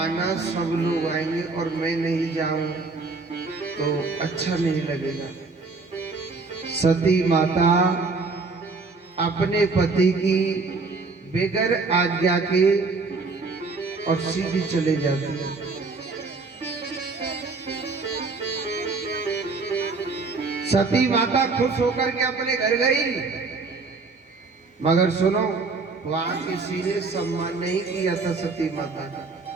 ना सब लोग आएंगे और मैं नहीं जाऊं तो अच्छा नहीं लगेगा। सती माता अपने पति की बेगर आज्ञा के और सीधी चले जाती है। सती माता खुश होकर के अपने घर गई, मगर सुनो वहां किसी ने सम्मान नहीं किया था सती माता का।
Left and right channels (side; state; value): left; quieter; 4.0 dB